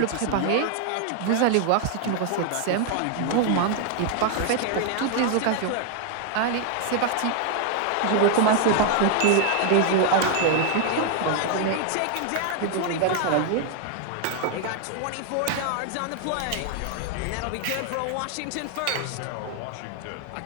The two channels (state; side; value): different; both; correlation 0.00